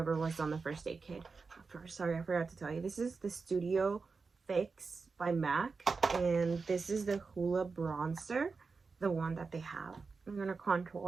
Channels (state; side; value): quieter; left; 4.6 dB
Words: was on the first aid kit. Sorry, I forgot to tell you. This is the Studio Fix by MAC. And this is the Hoola bronzer. The one that they have. I'm going to